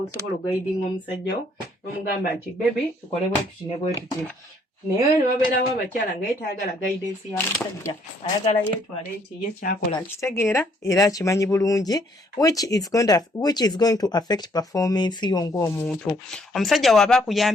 okugaidinga omusajja wo n'omugamba nti baby tukole bwe tuti ne bwe tuti. Naye ne wabeerawo abakyala nga ye tayagala guidance ya musajja, ayagala yeetwale nti ye kyakola akitegeera era akimanyi bulungi, which is going to affect performance yo ng'omuntu. Omusajja waba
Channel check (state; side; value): normal; both; correlation 0.66